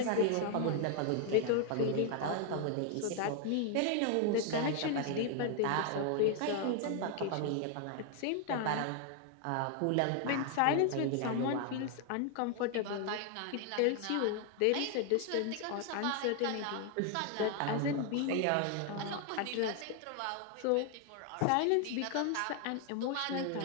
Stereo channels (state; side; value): different; both; correlation 0.00